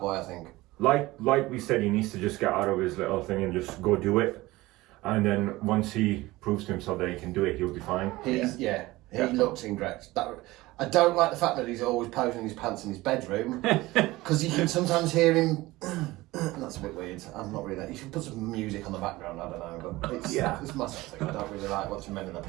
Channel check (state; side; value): quieter; left; 19.2 dB